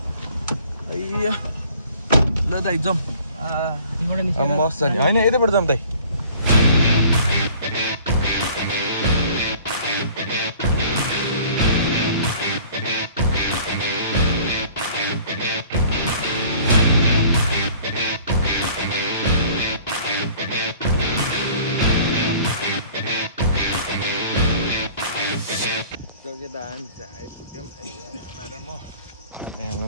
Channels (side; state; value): both; inverted; correlation -0.50